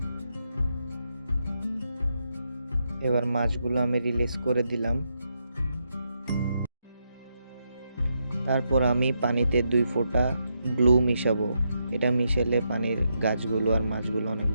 এবার মাছগুলো আমি রিলিজ করে দিলাম। তারপর আমি পানিতে 2 ফোঁটা ব্লু মিশাবো। এটা মিশালে পানির গাছগুলো আর মাছগুলো অনেক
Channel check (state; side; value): inverted; both; correlation -0.82